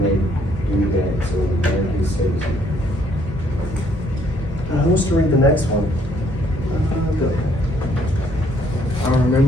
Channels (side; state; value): both; normal; correlation 0.66